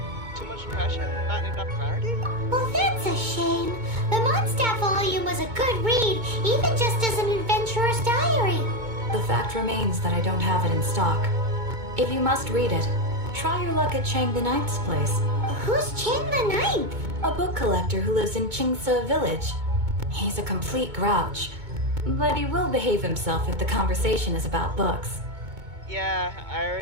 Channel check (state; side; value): late; left; 2.2 ms